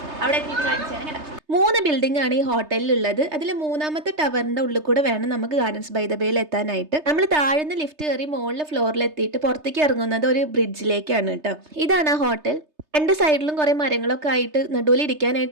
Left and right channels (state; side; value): late; left; 3.3 ms